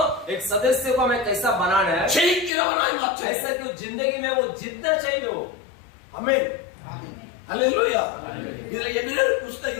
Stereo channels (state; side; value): drops out; right; at 2.5 s